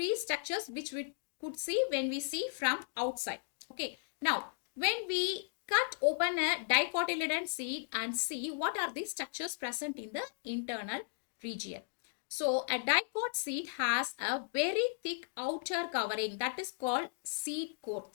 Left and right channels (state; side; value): silent; right; digital silence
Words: structures which we could see when we see from outside. Okay, now when we cut open a dicotyledon seed and see what are the structures present in the internal region. So a dicot seed has a very thick outer covering that is called seed